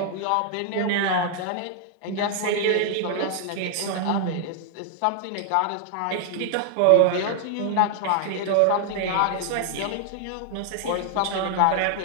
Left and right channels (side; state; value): both; different; correlation 0.00